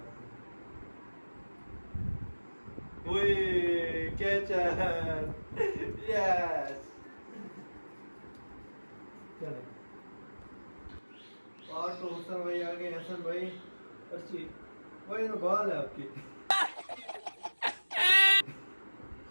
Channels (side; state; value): both; inverted; correlation -1.00